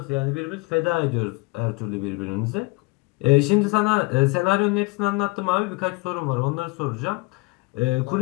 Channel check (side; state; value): right; quieter; 26.2 dB